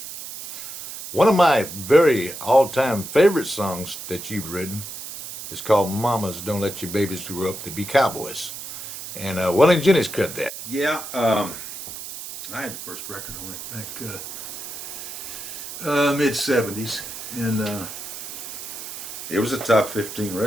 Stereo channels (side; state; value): right; noise; hiss, 10 dB below the sound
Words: One of my very all-time favorite songs that you've written is called Mamas Don't Let Your Babies Grow Up to Be Cowboys. And Will and Jenny's cut that. Yeah, I had the first record on it back mid-'70s, and it was a top 15